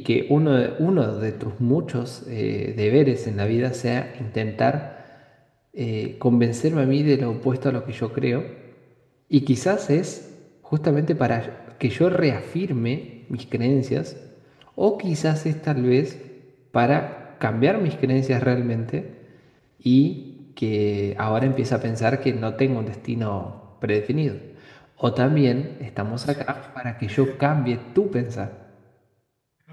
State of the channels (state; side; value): identical; both; correlation 1.00